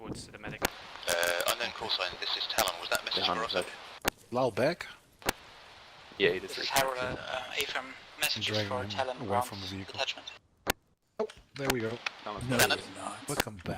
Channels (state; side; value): identical; both; correlation 1.00